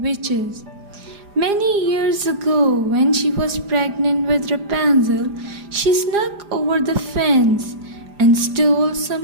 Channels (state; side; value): late; left; 4.9 ms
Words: Many years ago, when she was pregnant with Rapunzel, she snuck over the fence and stole